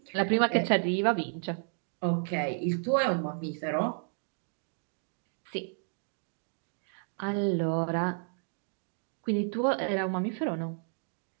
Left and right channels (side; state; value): left; silent; digital silence